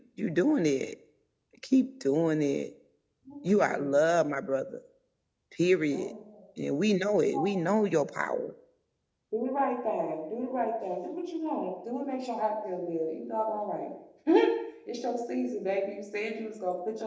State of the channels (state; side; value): identical; both; correlation 1.00